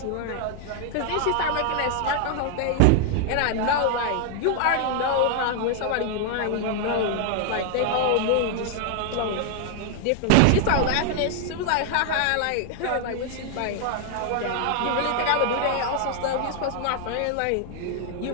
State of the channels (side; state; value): both; different; correlation 0.00